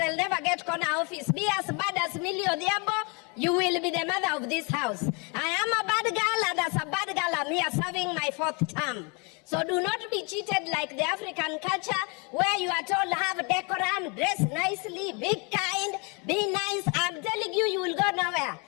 never get corner office. Be as bad as Millie Odiabo, you will be the mother of this house. I am a bad girl, and as a bad girl, I'm here serving my 4th term. So do not be cheated like the African culture where you are told have decorum, dress nicely, be kind, be nice. I'm telling you, you will go nowhere.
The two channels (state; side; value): quieter; right; 32.3 dB